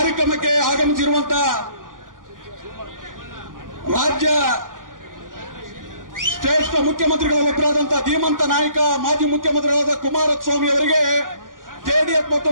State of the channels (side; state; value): left; late; 0.89 ms